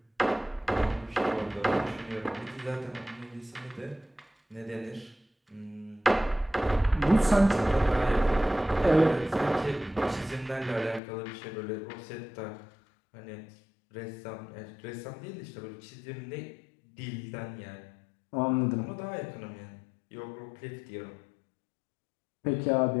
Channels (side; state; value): right; drops out; at 11.0 s